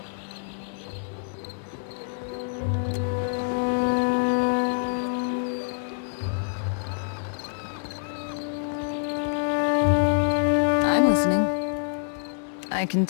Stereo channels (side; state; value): right; silent; digital silence